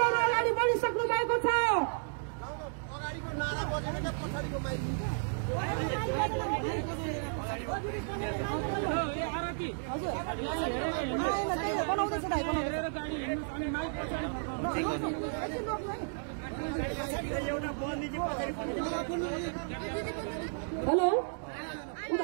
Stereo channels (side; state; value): left; silent; digital silence